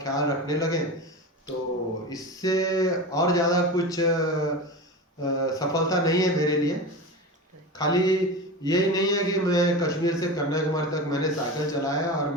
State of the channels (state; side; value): normal; both; correlation 0.27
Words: ख्याल रखने लगें, तो इससे और ज़्यादा कुछ सफलता नहीं है मेरे लिए। खाली यही नहीं है कि मैं कश्मीर से कन्याकुमारी तक मैंने साइकिल चलाया और